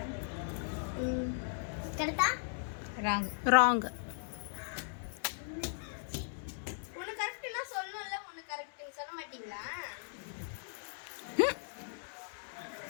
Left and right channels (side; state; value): right; silent; digital silence